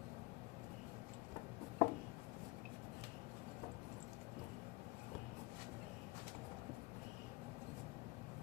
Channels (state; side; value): quieter; right; 22.3 dB